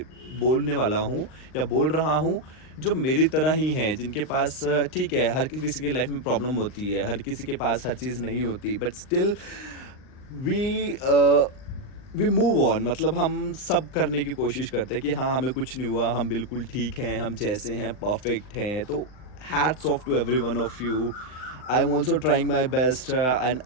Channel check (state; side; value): late; right; 39 ms